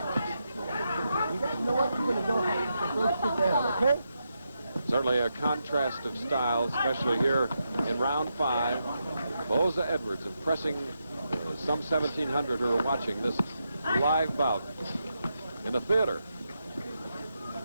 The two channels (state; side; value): inverted; both; correlation -0.84